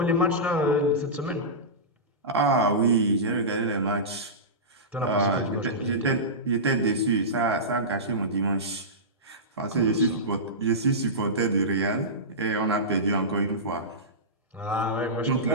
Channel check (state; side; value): normal; both; correlation -0.17